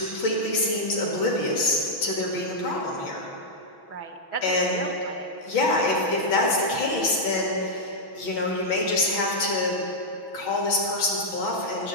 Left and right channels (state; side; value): late; right; 6.1 ms